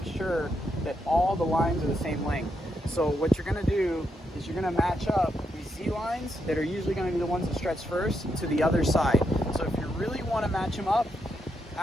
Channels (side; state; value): both; normal; correlation 0.81